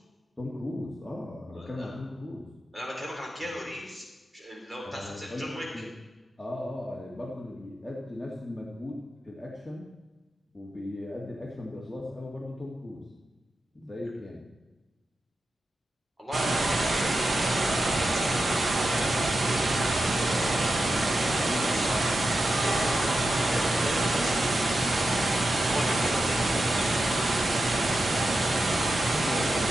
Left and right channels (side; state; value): both; normal; correlation 0.90